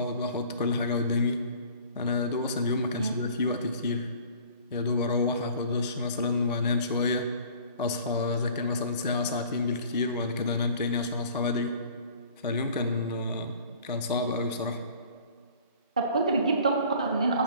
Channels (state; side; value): inverted; both; correlation -0.49